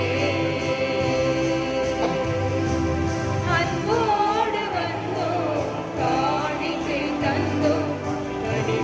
அன்போடு வந்தோம், காணிக்கை தந்தோம்,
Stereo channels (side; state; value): both; identical; correlation 1.00